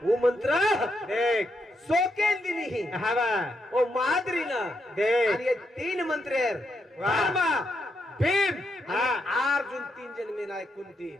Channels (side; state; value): both; normal; correlation 0.81